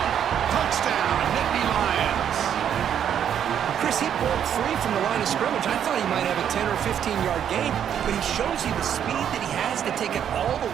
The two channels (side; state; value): left; quieter; 9.1 dB